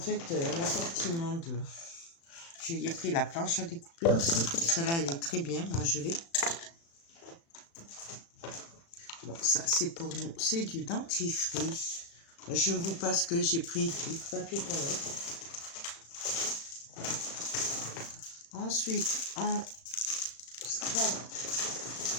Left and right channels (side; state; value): right; late; 36 ms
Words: l'assortiment de... Je lui ai pris la planche à découper aussi. Celle-là, elle est très bien. Moi, je l'ai. Bon, ça, c'est pour nous. C'est du dentifrice. Je vous passe que j'ai pris du papier toilette. Ensuite,